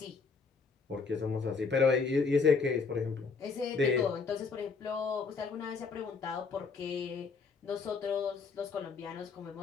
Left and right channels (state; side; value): quieter; right; 4.9 dB